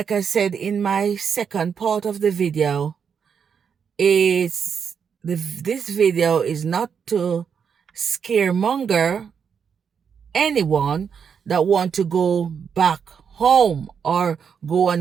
I said in my second part of the video, this video is not to scaremonger anyone that want to go back home or go on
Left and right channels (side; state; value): left; quieter; 6.9 dB